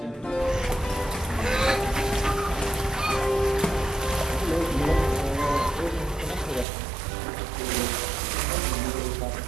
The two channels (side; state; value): left; drops out; at 6.7 s